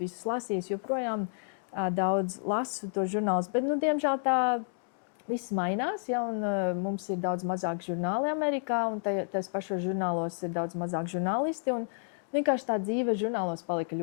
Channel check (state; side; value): silent; right; digital silence